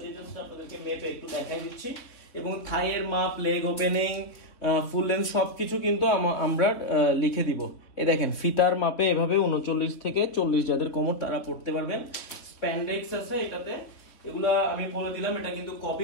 দিয়ে জাস্ট আপনাদেরকে মেপে একটু দেখাই দিচ্ছি। এবং থাইয়ের মাপ, লেগ ওপেনিং, ফুল লেন্থ সবকিছু কিন্তু আমরা লিখে দিব। এই দেখেন ফিতার মাপে এভাবে 39 থেকে 40 যাদের কোমর তারা পড়তে পারবেন। স্প্যান্ডেক্স আছে এটাতে। এগুলা আমি বলে দিলাম, এটা কিন্তু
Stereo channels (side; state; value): right; late; 3.6 ms